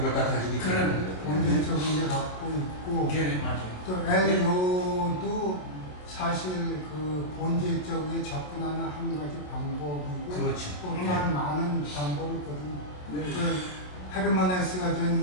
걸 다 가지고 있는 그런 거죠. 본질적인 게 갖고 있고 걔네 맞아요. 또 엘로도 사실 그 본질적으로 접근하는 한 가지 방법이고 그렇지. 또 다른 많은 방법이 있거든요. 그 헤르만헤스가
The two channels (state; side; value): late; right; 27 ms